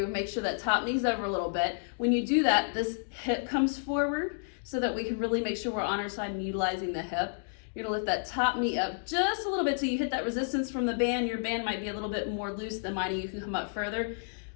make sure that top knee's over a little bit. When you do that, this hip comes forward so that we can really make sure we're on our side and utilizing the hip. You're gonna lift that top knee up just a little bit till you hit that resistance from the band. Your band might be a little bit more loose than mine, and you can come up further.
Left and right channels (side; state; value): right; silent; digital silence